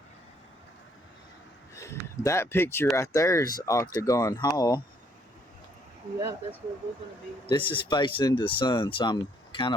That picture right there is Octagon Hall. Yeah, that's where we're going to be. This is facing into the sun, so I'm kind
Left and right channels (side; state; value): both; normal; correlation 0.67